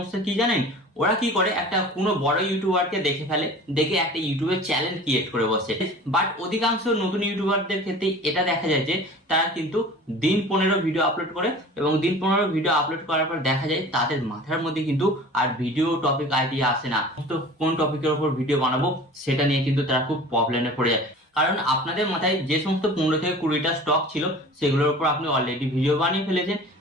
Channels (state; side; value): normal; both; correlation 0.41